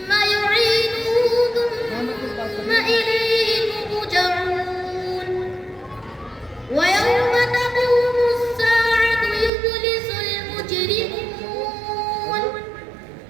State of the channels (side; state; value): left; drops out; at 9.5 s